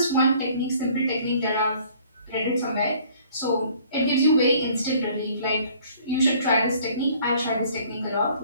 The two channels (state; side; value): inverted; both; correlation -0.56